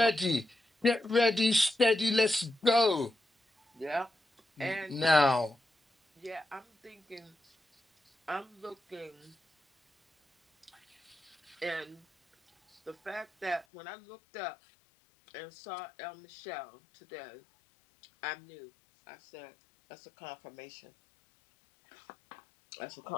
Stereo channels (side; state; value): right; drops out; at 13.7 s